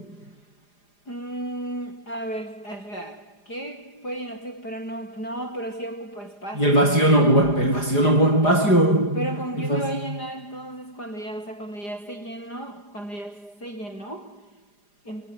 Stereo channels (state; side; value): late; right; 4.9 ms